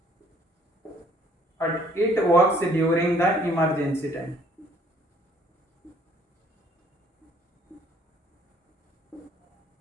but it works during the emergency time.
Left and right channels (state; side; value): normal; both; correlation 0.60